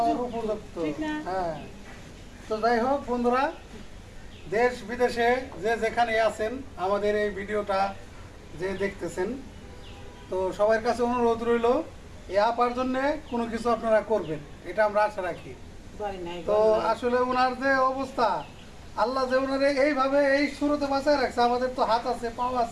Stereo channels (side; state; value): both; identical; correlation 1.00